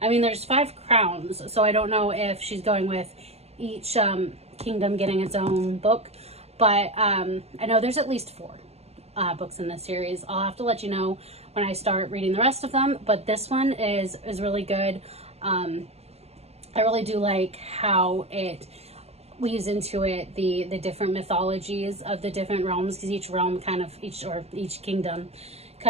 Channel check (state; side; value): late; left; 0.30 ms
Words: I mean, there's 5 crowns. So I don't know if she's going with each kingdom getting its own book. But I know there's at least 4 books in this series. I'll have to let you know when I start reading the rest of them, but this one is really good. I really do like how it weaves into it the different mythologies of the different realms, because each realm each kingdom